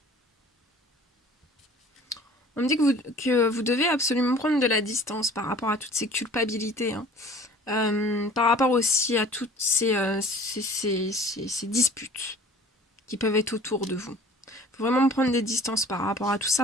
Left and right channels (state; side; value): normal; both; correlation 0.48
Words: On me dit que vous devez absolument prendre de la distance par rapport à toutes ces culpabilités. Hein. Par rapport aussi à toutes ces disputes qui peuvent être autour de vous. Il faut vraiment prendre des distances par rapport à tout